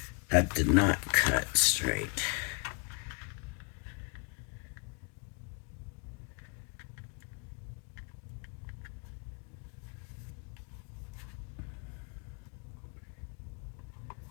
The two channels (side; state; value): right; quieter; 34.0 dB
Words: That did not cut straight.